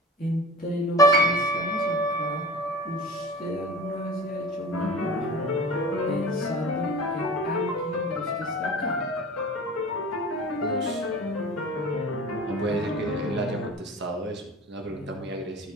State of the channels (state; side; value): normal; both; correlation 0.37